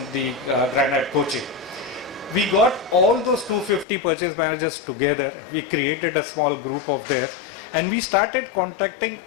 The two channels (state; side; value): drops out; right; at 3.9 s